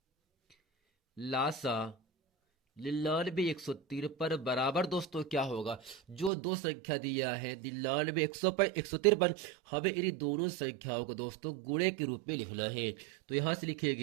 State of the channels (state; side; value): drops out; left; at 6.3 s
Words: लासा 99 153 बराबर दोस्तों क्या होगा, जो दो संख्या दिया है 99 153, हमें इन दोनों संख्याओं को दोस्तों गुणे के रूप में लिखना है। तो यहां से